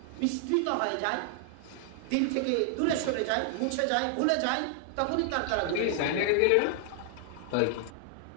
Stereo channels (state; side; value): different; both; correlation 0.00